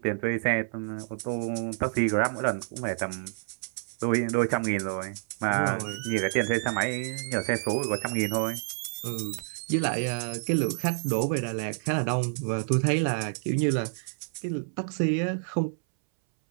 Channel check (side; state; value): left; silent; 59 dB below the other